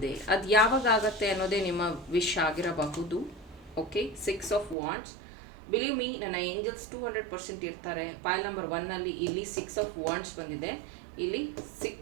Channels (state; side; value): drops out; left; at 4.8 s